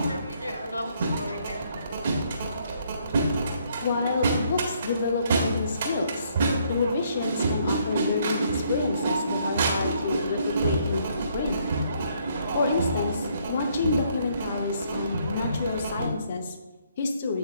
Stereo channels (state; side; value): inverted; both; correlation -0.69